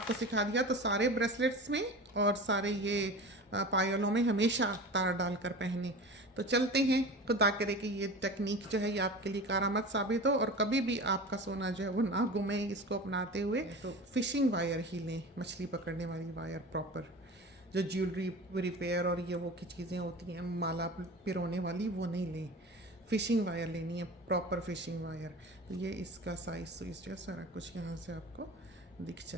सिखा दिया। तो सारे ब्रेसलेट्स में और सारे ये पायलों में हमेशा तार डालकर पहने। तो चलते हैं, खुदा करे कि ये टेक्निक जो है ये आपके लिए कारआमद साबित हो, और कभी भी आपका सोना जो है वो ना गुमे इसको अपनाते हुए। तो फिशिंग वायर ही लें, मछली पकड़ने वाली वायर प्रॉपर, जो ज्वेलरी रिपेयर और ये वो की चीज़ें होती हैं माला पिरोने वाली, वो नहीं लें। फ़िशिंग वायर लेनी है, प्रॉपर फ़िशिंग वायर। तो ये इसका साइज़ सुइज़ जो है सारा कुछ यहाँ से आपको दिख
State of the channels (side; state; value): both; normal; correlation 0.34